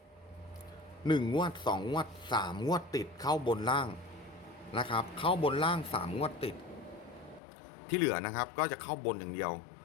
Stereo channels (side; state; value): right; drops out; at 7.4 s